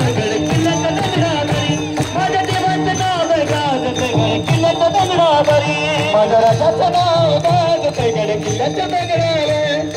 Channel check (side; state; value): both; identical; correlation 1.00